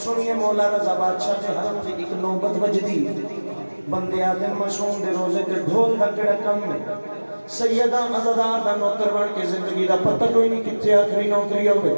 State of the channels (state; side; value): inverted; both; correlation -1.00